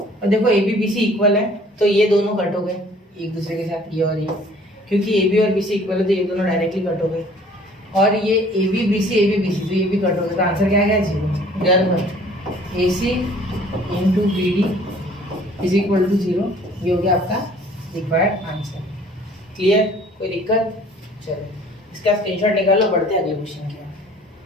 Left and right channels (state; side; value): normal; both; correlation 0.54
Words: देखो a b b c equal है तो ये दोनों कट हो गए एक दूसरे के साथ, ये और ये, क्योंकि ए बी और बी सी इक्वल है तो ये दोनों डायरेक्टली कट हो गए, और ये ए बी बी सी तो ये भी कट हो गए, तो आंसर क्या आ गया, 0। Therefore a c into b d is equal to 0। ये हो गया आपका रिक्वायर्ड आंसर। क्लियर, कोई दिक्कत, चलो इसका स्क्रीनशॉट निकालो, बढ़ते हैं अगले क्वेश्चन की।